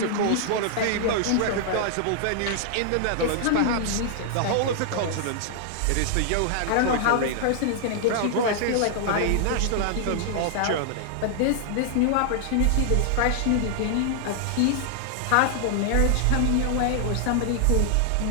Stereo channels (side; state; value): both; different; correlation -0.01